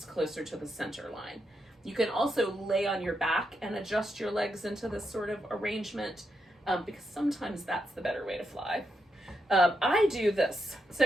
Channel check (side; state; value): both; normal; correlation 0.83